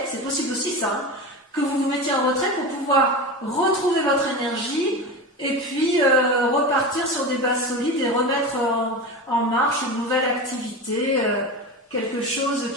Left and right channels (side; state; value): both; normal; correlation 0.25